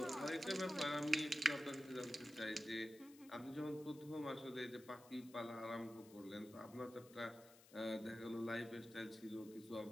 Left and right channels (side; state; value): left; noise; hiss, 21 dB below the sound